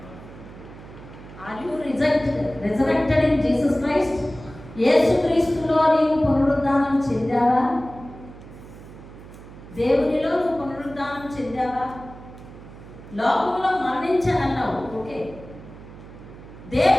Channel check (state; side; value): noise; right; hum, 17 dB below the sound